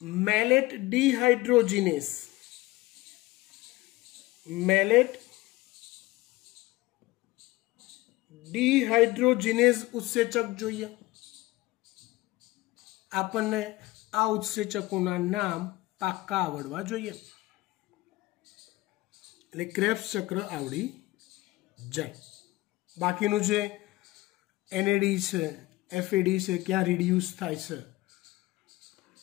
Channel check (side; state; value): right; quieter; 19.4 dB